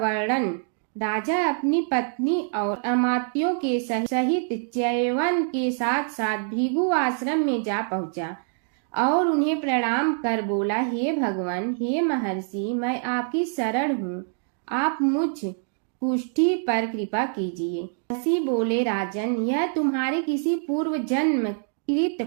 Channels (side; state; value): left; silent; 62 dB below the other